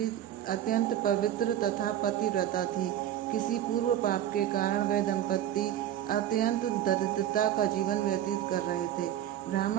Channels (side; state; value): left; quieter; 11.5 dB